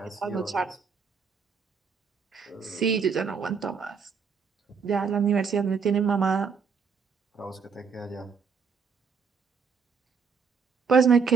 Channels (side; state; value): left; quieter; 5.8 dB